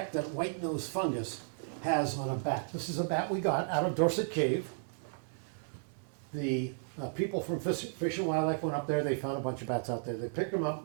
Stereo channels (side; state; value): left; silent; 55 dB below the other